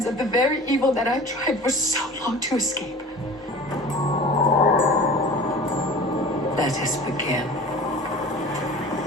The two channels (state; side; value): normal; both; correlation 0.40